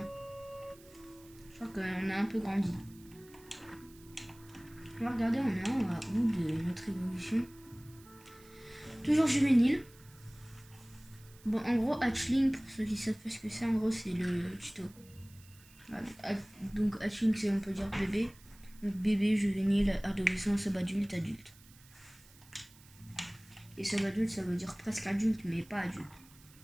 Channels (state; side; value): noise; right; hiss, 24 dB below the sound